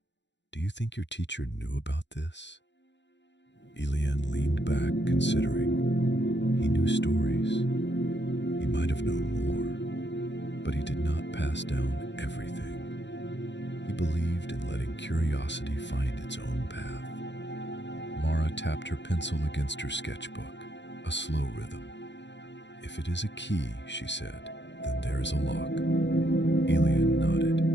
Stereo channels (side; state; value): right; late; 0.52 ms